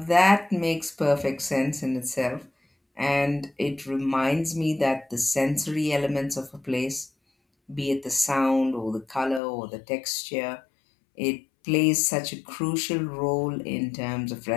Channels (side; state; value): right; drops out; at 9.4 s